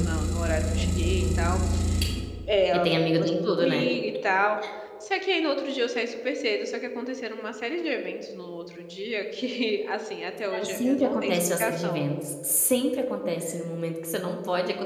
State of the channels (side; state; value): both; identical; correlation 1.00